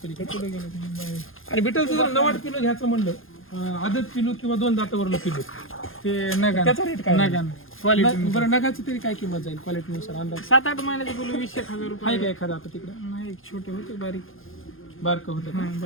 पुढे गेलं आणि बिटलचं जर 90 किलो घ्यायचं म्हणलं आदत पिलू किंवा 2 दातावरलं पिलू ते नगा त्याचा रेट काय? नगा क्वालिटी बरं नगाची तरी काय किंमत जाईल क्वालिटीनुसार अंदाज 7-8 महिन्याचं बोलू 20,000 रुपये. आहे का एखादा आता तिकडे? नाही एक छोटे होते बारीक बारकं होतं का?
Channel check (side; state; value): right; late; 0.60 ms